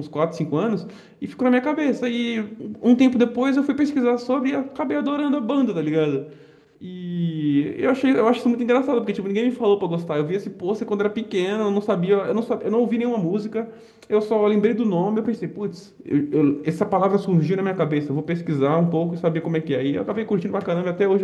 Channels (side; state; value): both; identical; correlation 1.00